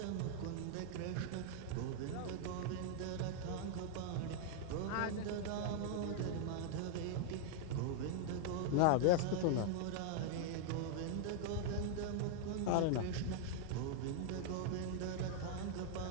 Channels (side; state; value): both; different; correlation 0.00